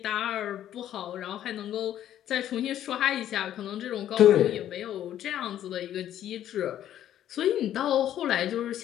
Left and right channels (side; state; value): right; quieter; 11.4 dB